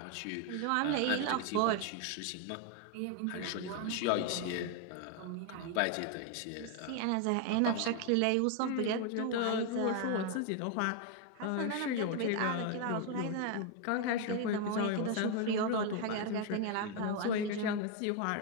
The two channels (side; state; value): both; different; correlation 0.01